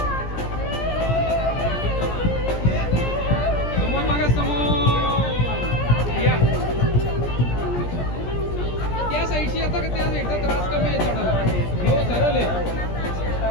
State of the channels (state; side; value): late; right; 17 ms